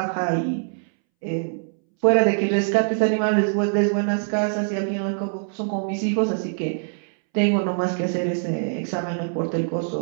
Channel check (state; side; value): silent; left; 63 dB below the other